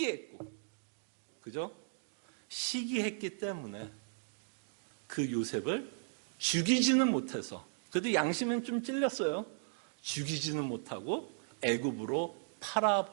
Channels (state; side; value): silent; left; digital silence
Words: 그죠? 시기했기 때문에 그 요셉을 죽이지는 못해서, 그래도 양심은 좀 찔렸어요. 죽이지는 못하고 애굽으로